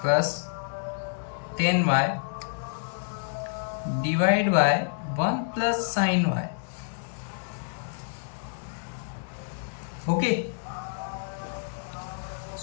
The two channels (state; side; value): silent; right; digital silence